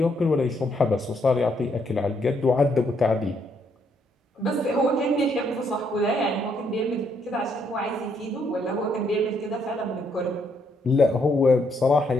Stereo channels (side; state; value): both; normal; correlation 0.73